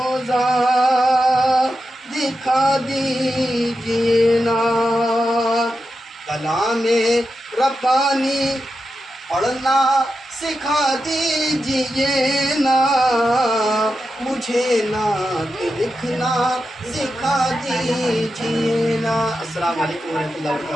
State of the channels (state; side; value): normal; both; correlation 0.89